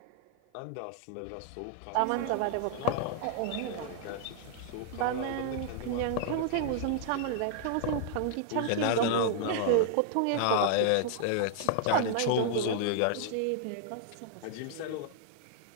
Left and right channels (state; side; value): different; both; correlation -0.01